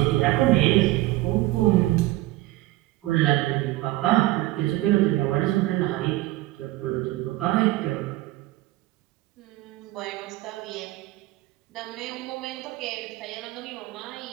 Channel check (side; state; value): left; quieter; 17.6 dB